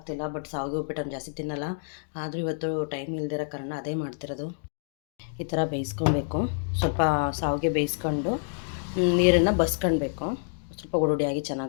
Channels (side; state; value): right; silent; digital silence